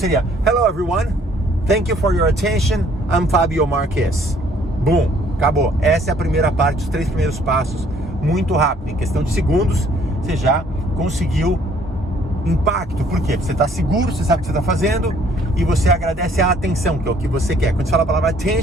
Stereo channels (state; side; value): normal; both; correlation 0.61